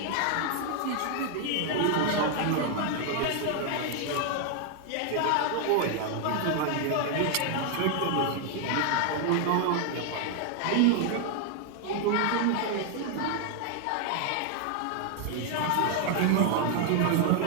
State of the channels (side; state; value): both; different; correlation 0.00